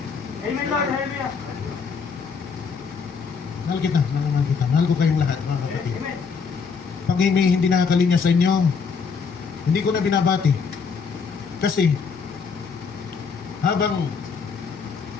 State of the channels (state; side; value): quieter; right; 5.6 dB